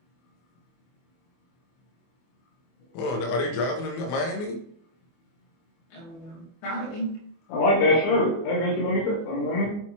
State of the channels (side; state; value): right; late; 24 ms